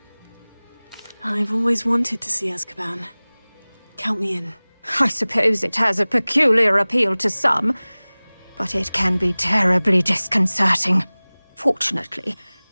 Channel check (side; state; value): both; inverted; correlation -1.00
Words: I've always wanted to see Azkaban. Count me in. I suppose it has a peculiar appeal to some, but it can be terribly disconcerting. Fortunately,